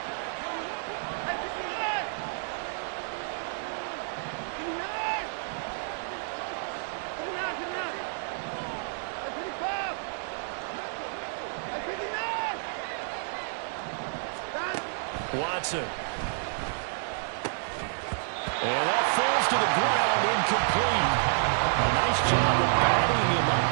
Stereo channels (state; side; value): silent; left; digital silence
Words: Watson. And that falls to the ground, incomplete. A nice job of batting him up